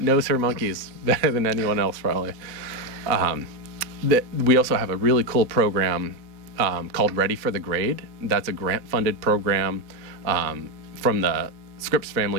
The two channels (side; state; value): left; late; 3.9 ms